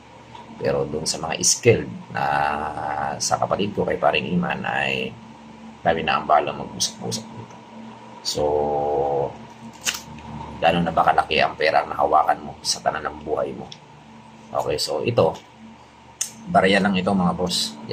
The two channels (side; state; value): both; identical; correlation 1.00